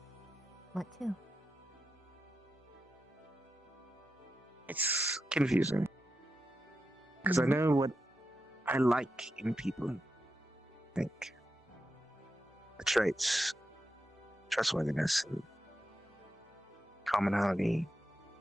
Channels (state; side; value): normal; both; correlation 0.88